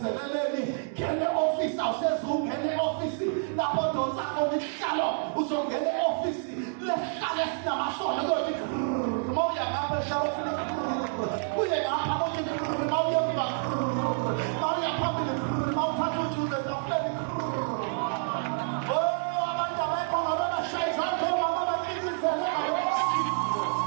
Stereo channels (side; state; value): left; silent; 55 dB below the other